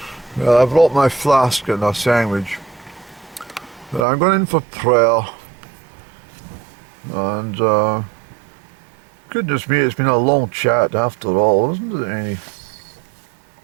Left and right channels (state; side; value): drops out; left; at 4.0 s